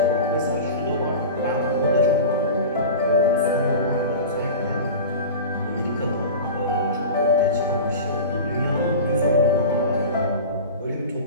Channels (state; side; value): inverted; both; correlation -0.31